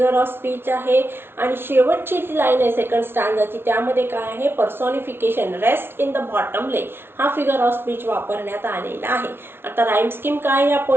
ऑफ स्पीच आहे. आणि शेवटची जी लाईन आहे सेकंड स्टांजाची, त्यामध्ये काय आहे? पर्सॉनिफिकेशन, रेस्ट इन द बॉटम ले हा फिगर ऑफ स्पीच वापरण्यात आलेला आहे. आता राईम स्कीम काय या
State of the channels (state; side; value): late; left; 0.11 ms